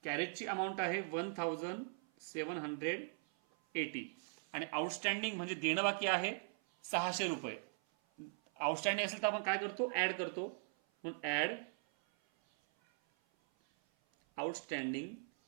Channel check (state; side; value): silent; left; 51 dB below the other